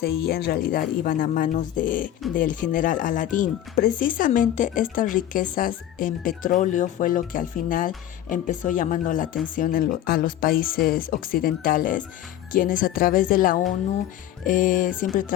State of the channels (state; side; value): quieter; right; 12.0 dB